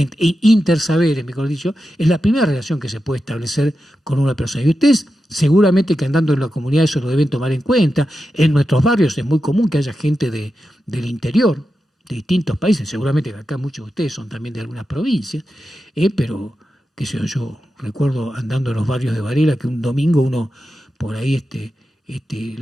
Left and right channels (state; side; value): normal; both; correlation 0.90